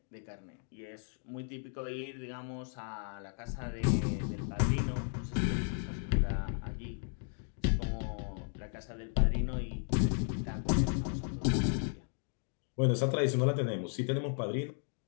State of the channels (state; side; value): silent; right; 55 dB below the other